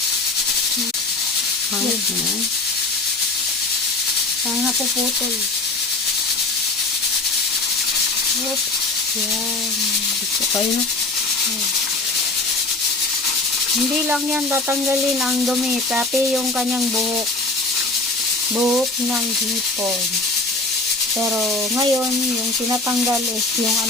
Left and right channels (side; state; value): right; quieter; 3.3 dB